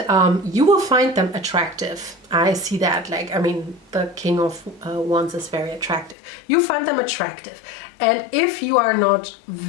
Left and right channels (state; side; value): drops out; right; at 6.2 s